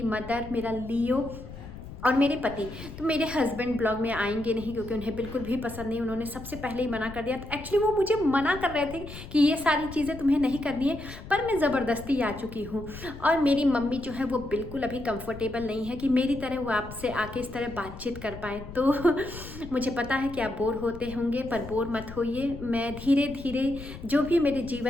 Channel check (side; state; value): left; noise; rumble, 13 dB below the sound